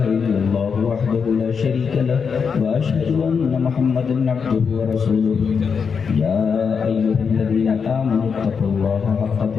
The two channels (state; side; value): quieter; right; 6.0 dB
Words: إلا الله وحده لا شريك له وأشهد أن محمدا عبده ورسوله يا أيها الذين آمنوا اتقوا الله حق